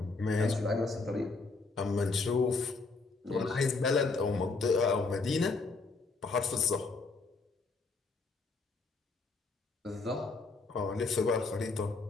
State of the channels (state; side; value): quieter; right; 3.9 dB